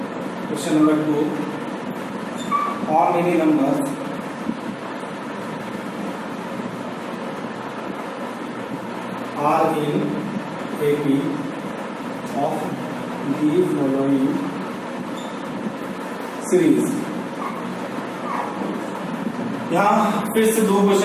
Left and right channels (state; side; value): identical; both; correlation 1.00